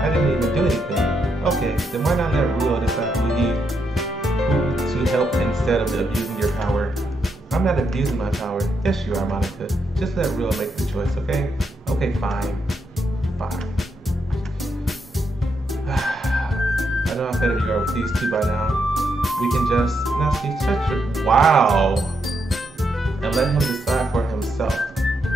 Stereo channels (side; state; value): both; normal; correlation 0.80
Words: didn't even do anything. Okay, then why not let Ruel decide who to help instead of abusing your power? I'm not abusing my power. Yes, you are, Monika. Just let Ruel make the choice, okay? Okay, fine. Fine. I know how better you are with these two by now. We can just, Natsuki, shut your, wow. And let him decide for himself.